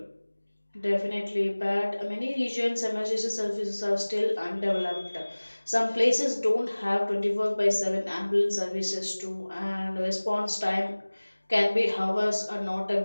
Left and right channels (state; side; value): inverted; both; correlation -1.00